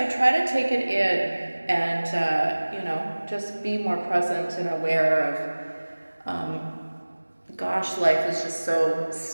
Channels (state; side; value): inverted; both; correlation -1.00